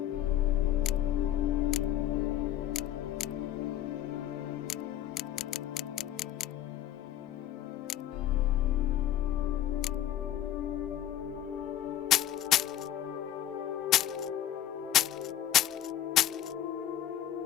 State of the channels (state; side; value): quieter; right; 11.8 dB